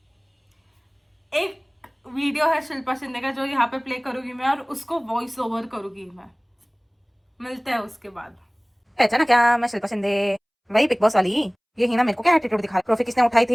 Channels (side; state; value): both; identical; correlation 1.00